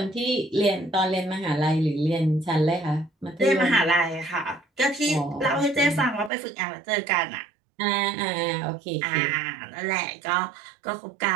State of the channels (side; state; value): left; drops out; at 6.3 s